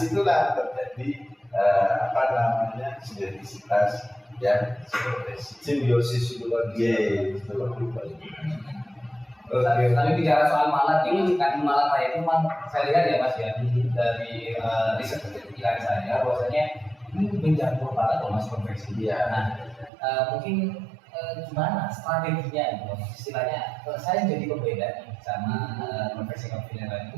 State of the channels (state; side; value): drops out; left; at 19.9 s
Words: terjadi sinergisitas yang simbiosis itu lagi. Tapi bicara soal Malang ini, kan Malang saya itu saya lihat ya Mas ya, dari riset kepikiran saya bahwasanya ini menjangkau banget loh Mas konveksi dia. Nah, mungkin gimana strateginya gitu, istilahnya saya jadi pembeda nih sama konveksi yang lain.